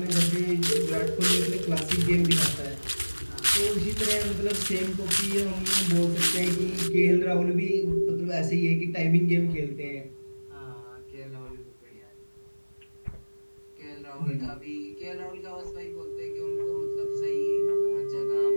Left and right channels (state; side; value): inverted; both; correlation -1.00